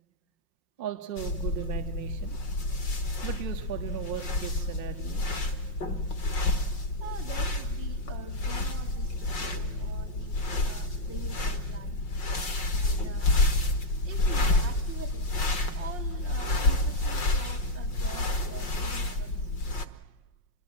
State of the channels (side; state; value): right; late; 5.5 ms